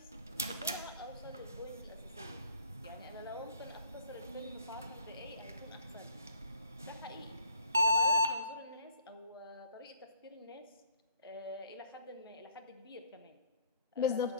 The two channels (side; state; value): both; inverted; correlation -0.56